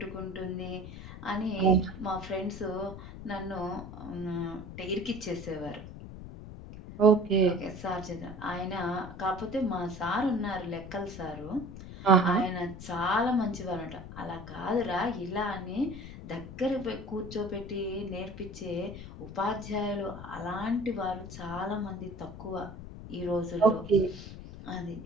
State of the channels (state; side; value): noise; left; rumble, 12 dB below the sound